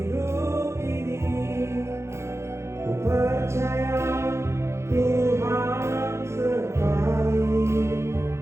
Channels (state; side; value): late; left; 0.13 ms